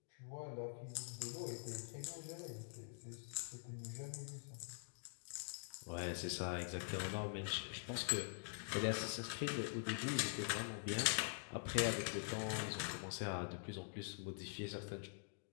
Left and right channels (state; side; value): silent; right; digital silence